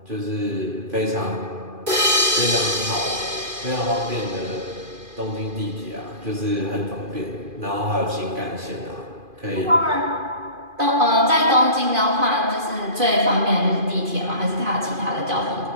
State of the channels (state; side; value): late; left; 2.4 ms